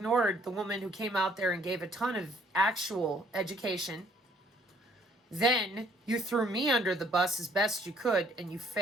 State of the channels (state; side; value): normal; both; correlation 0.63